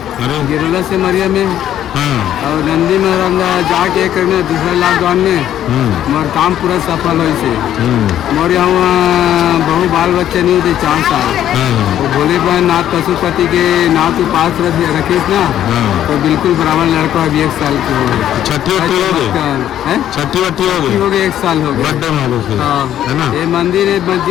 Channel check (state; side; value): quieter; right; 11.3 dB